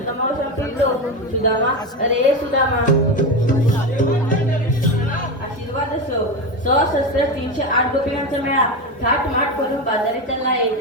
सांगितलो सुदामा अरे सुदामा आशीर्वाद असो सशस्त्र 308 गोपिकांचा मेळा थाटमाट करून बाजारी चालला आहे.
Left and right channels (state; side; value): normal; both; correlation 0.17